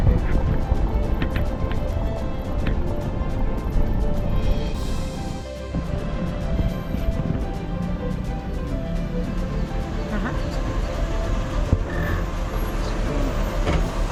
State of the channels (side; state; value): both; identical; correlation 1.00